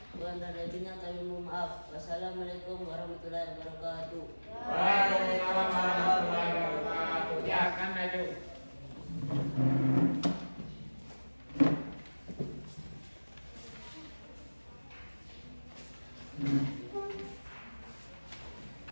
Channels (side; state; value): both; inverted; correlation -1.00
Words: Kurang dan lebihnya kami mohon maaf. Wassalamualaikum warahmatullahi wabarakatuh. Waalaikumsalam warahmatullahi wabarakatuh. Ya, kan maju.